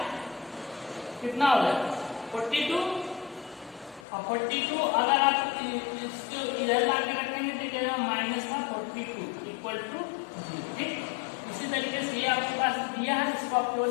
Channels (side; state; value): right; drops out; at 4.0 s